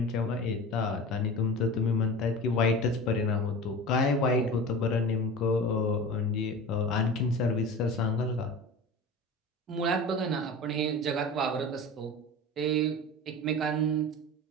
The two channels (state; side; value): normal; both; correlation 0.33